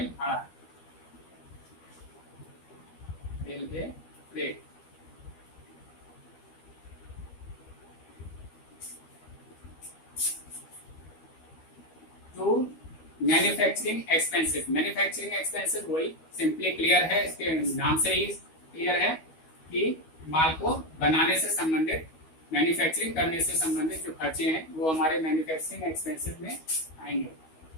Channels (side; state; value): right; late; 13 ms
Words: भाड़ा, railway freight. To manufacturing expenses. Manufacturing expenses वही सिंपली क्लियर है, इसके नाम से ही क्लियर है कि माल को बनाने से संबंधित, मैन्युफैक्चरिंग करने से संबंधित जो खर्चे हैं वो हमारे मैन्युफैक्चरिंग एक्सपेंसेस में आएंगे।